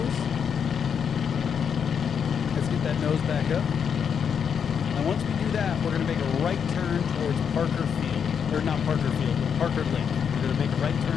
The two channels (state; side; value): quieter; right; 7.3 dB